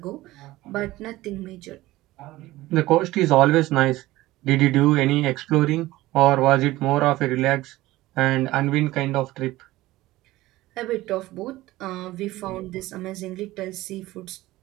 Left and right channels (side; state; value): left; quieter; 17.6 dB